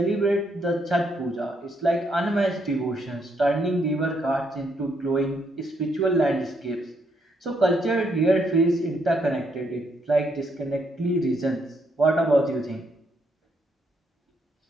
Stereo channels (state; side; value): normal; both; correlation 0.75